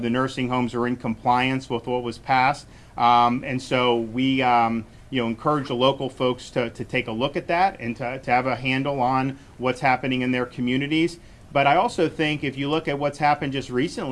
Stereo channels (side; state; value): both; identical; correlation 1.00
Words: the nursing homes are in compliance with what was passed. And so we you know, encourage the local folks to take a look at that and to have a handle on what's happening in their communities. But I also think if you look at what's happened just